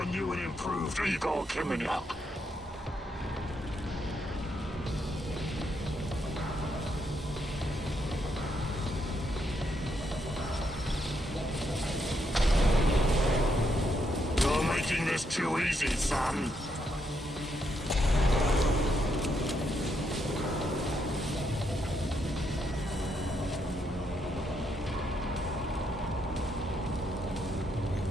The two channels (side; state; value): both; normal; correlation 0.78